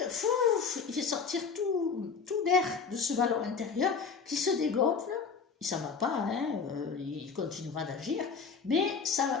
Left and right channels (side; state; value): right; quieter; 5.6 dB